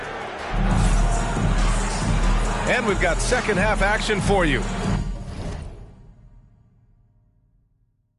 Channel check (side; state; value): both; identical; correlation 1.00